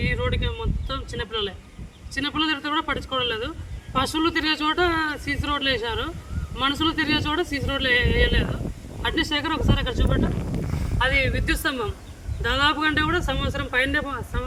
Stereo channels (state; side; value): identical; both; correlation 1.00